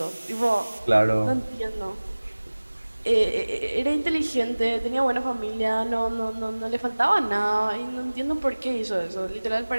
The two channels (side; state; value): both; inverted; correlation -1.00